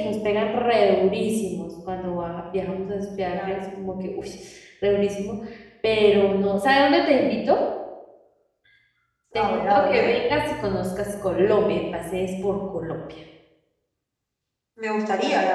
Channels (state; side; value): identical; both; correlation 1.00